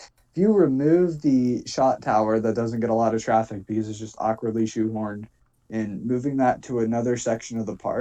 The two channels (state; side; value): identical; both; correlation 1.00